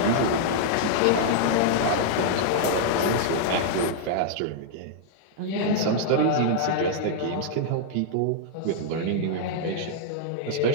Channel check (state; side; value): different; both; correlation -0.01